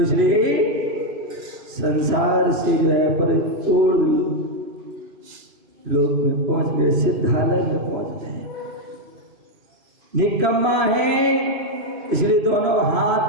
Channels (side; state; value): left; late; 2.4 ms